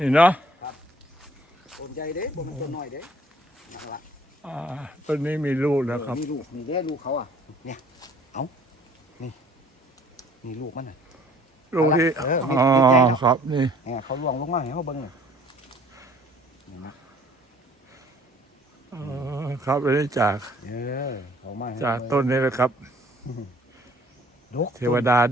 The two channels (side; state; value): both; normal; correlation 0.55